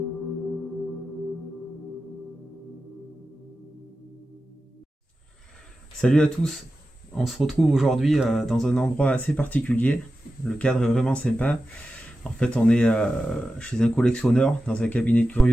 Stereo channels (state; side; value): normal; both; correlation 0.93